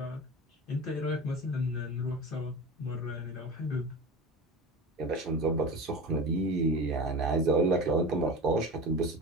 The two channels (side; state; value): both; normal; correlation 0.31